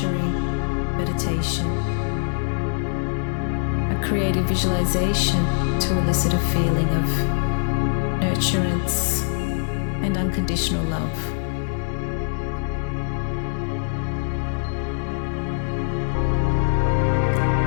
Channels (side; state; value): right; silent; digital silence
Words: meditation, a creative visualization to elicit a feeling of nurturance and unconditional love.